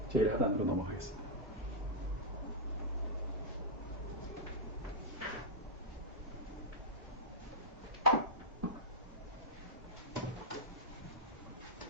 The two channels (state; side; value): normal; both; correlation -0.06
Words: 제일 하단으로 넘어가겠습니다.